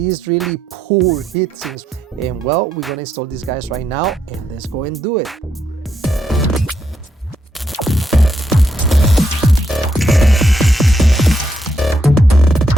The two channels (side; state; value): both; normal; correlation 0.78